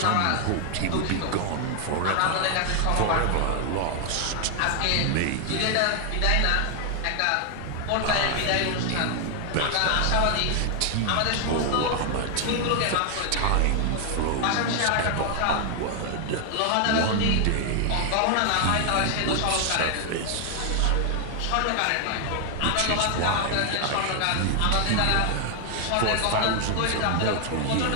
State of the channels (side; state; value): both; different; correlation 0.00